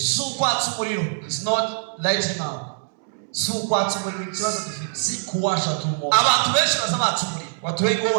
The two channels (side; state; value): left; silent; 63 dB below the other